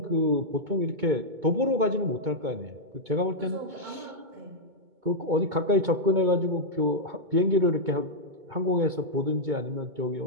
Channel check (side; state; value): left; late; 2.2 ms